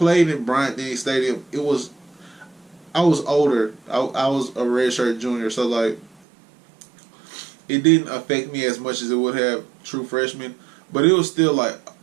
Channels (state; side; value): drops out; left; at 6.1 s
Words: in Bryant-Denny Stadium, I was older. I was a redshirt junior, so like, it didn't affect me as much as it would have true freshmen, but it was still like,